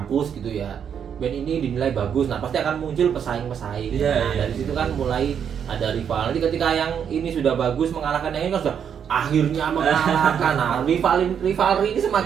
gitu ya, band ini dinilai bagus, nah pasti akan muncul pesaing-pesaing. Iya, Nah iya. dari situ kan mulai ada rival. Nanti ketika yang ini sudah bagus mengalahkan yang ini kan sudah akhirnya mengalahkan. Nah rivalry ini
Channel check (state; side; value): quieter; left; 8.0 dB